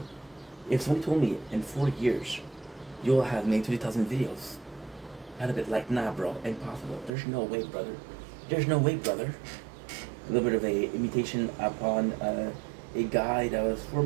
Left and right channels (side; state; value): left; drops out; at 7.1 s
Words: if somebody told me in 4 years you'll have made 20,000 videos, I'd have been like, nah bro, impossible. There's no way, brother. There's no way, brother. A little bit of a imitation upon a guy that was